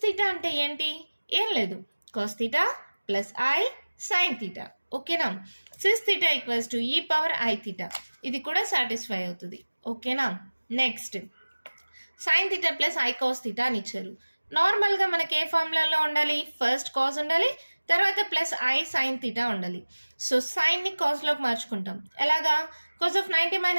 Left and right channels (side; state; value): both; inverted; correlation -1.00